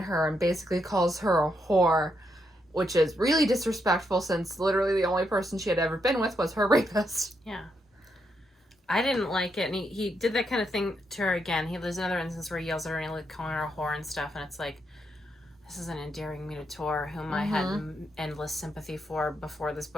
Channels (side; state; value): both; normal; correlation 0.79